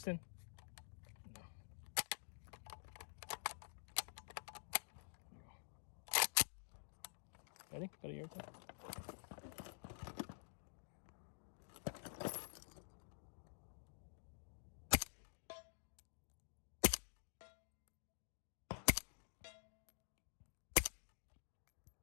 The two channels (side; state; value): right; silent; digital silence